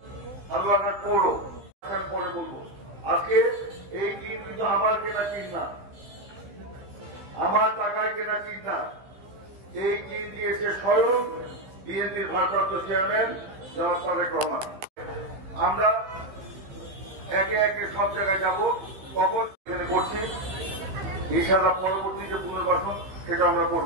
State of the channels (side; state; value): left; late; 15 ms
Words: হালুয়াঘাট পৌর পরে বলবো, আজকে এই টিম কিন্তু আমার কেনা টিম না, আমার টাকায় কেনা টিম না। এই টিম দিয়েছে স্বয়ং বিএনপির ভারপ্রাপ্ত চেয়ারম্যান জনাব তারেক রহমান। আমরা একে একে সব জায়গায় যাব, কখন এখানে করছি ইনশাআল্লাহ পরবর্তী যে পুনর্বাসন সেটা আমরা